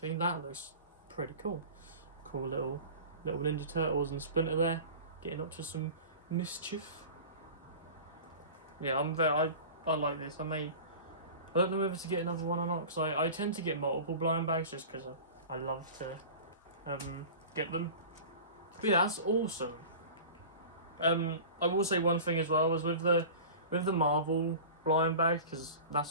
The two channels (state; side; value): inverted; both; correlation -0.37